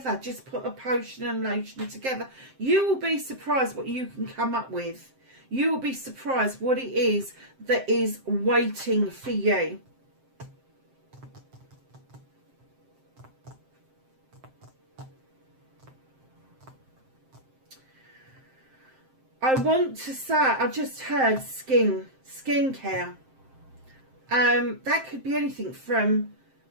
Just put a potion and lotion together. You will be surprised what you can come up with. You will be surprised what it is that is waiting for you. I want to say, I just heard skincare. That could be anything from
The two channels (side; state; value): left; late; 7.6 ms